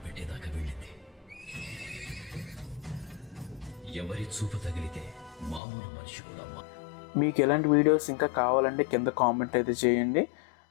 పెట్టేదాకా వెళ్ళింది. ఎవరి చూపు తగిలితే మామూలు మనిషి కూడా మీకు ఎలాంటి వీడియోస్ ఇంకా కావాలంటే కింద కామెంట్ అయితే చేయండి.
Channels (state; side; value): drops out; right; at 5.6 s